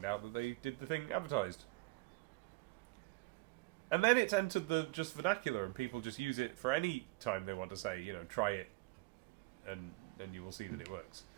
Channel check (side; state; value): left; quieter; 22.4 dB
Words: out that they did the thing advertised. And then it's entered the just vernacular, and people just use it for any time they want to say, try it, and you will see that it works.